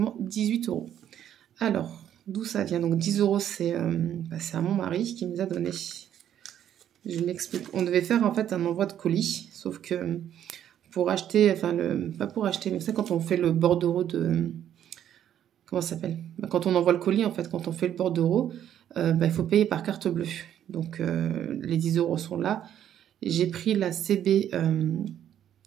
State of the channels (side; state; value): left; quieter; 10.4 dB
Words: 18 €. Alors, d'où ça vient? Donc, 10 €, c'est à mon mari qui me les a donnés. Je m'explique. On devait faire en fait un envoi de colis, sauf que pour acheter, enfin, pas pour acheter, mais c'est quand on fait le bordereau de... Comment ça s'appelle? Bah, quand on envoie le colis, en fait, quand on fait le bordereau, il faut payer par carte bleue. Donc, les 10 € sont là. J'ai pris la CB,